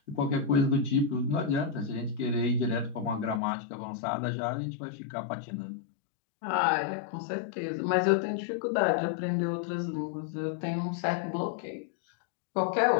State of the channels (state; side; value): drops out; right; at 3.4 s